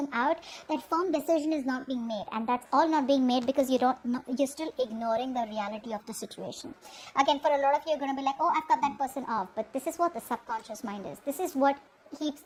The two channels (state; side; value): identical; both; correlation 1.00